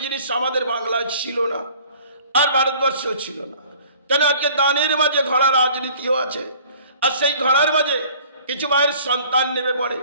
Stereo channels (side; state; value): both; inverted; correlation -0.51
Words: জিনিস আমাদের বাংলায় ছিল না, আর ভারতবর্ষেও ছিল না। কেন আজকে দানের মাঝে ঘোড়া রাজনীতিও আছে, আর সেই ঘোড়ার মাঝে কিছু মায়ের সন্তান নেমে পড়ে,